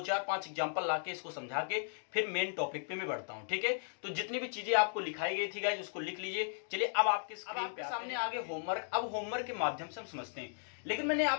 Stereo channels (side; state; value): right; silent; digital silence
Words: 4 5 एग्जांपल लाके इसको समझा के फिर मेन टॉपिक पे मैं बढ़ता हूँ, ठीक है। तो जितनी भी चीजें आपको लिखाई गई थी गाइस उसको लिख लीजिए। चलिए अब आपके सामने आगे होमवर्क। अब होमवर्क के माध्यम से हम समझते हैं, लेकिन मैंने